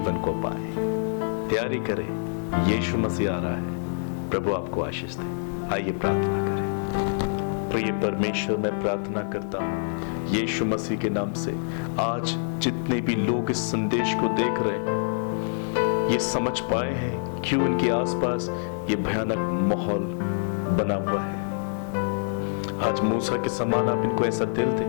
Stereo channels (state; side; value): silent; right; 61 dB below the other